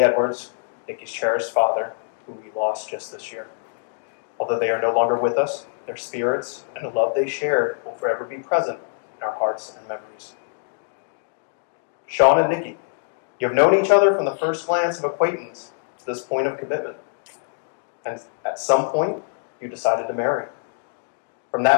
Edwards, Niki's cherished father, who we lost just this year. Although they are no longer with us, their spirits and the love they shared will forever be present in our hearts and memories. Shaun and Niki, you have known each other from the first glance of acquaintance to this point of commitment. And at some point, you decided to marry. From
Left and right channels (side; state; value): right; silent; digital silence